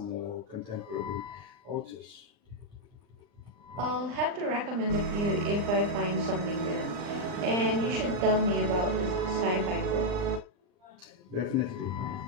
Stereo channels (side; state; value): left; late; 39 ms